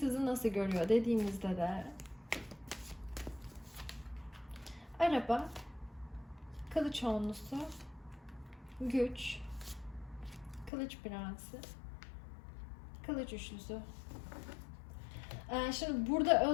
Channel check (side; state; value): right; drops out; at 10.7 s